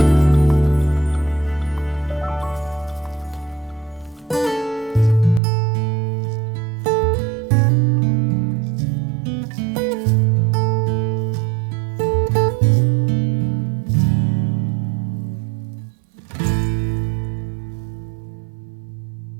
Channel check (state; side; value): drops out; left; at 5.4 s